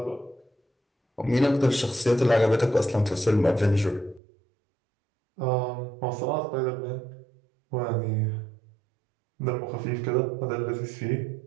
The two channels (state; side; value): drops out; left; at 4.2 s